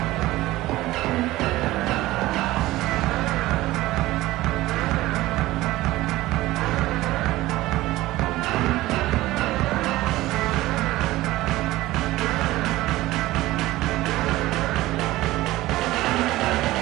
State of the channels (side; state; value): left; quieter; 17.5 dB